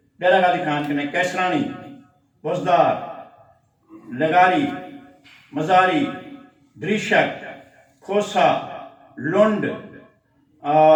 ڈیرہ غازی خان کنے کیسرانی بزدار لگاری مزاری دریشک کھوسا لنڈ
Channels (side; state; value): both; identical; correlation 1.00